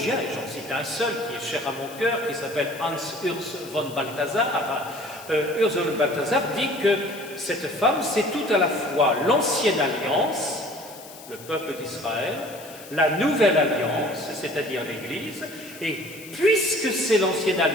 et j'en cite un seul qui est cher à mon cœur, qui s'appelle Hans Urs von Balthasar, Urs von Balthasar dit que cette femme, c'est tout à la fois l'ancienne alliance, le peuple d'Israël, la nouvelle alliance, c'est-à-dire l'Église, et puisque c'est l'ancienne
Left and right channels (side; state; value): left; noise; hiss, 18 dB below the sound